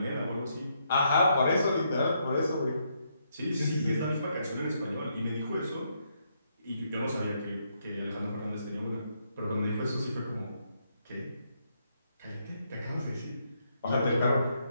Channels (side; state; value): both; inverted; correlation -0.76